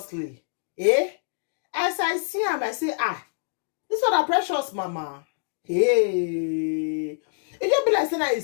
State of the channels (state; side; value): silent; right; digital silence